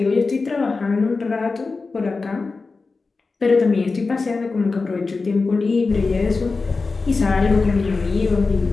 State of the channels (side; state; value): right; quieter; 4.1 dB